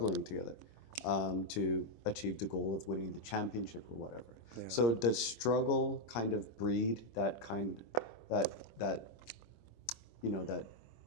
together to achieve the goal of winning the championship or whatever. Yeah. So does struggle kind of breed that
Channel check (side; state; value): right; late; 25 ms